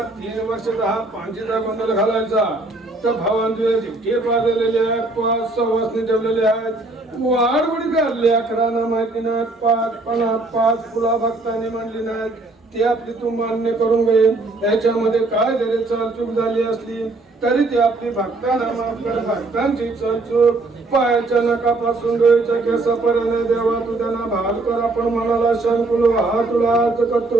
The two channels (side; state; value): left; quieter; 3.1 dB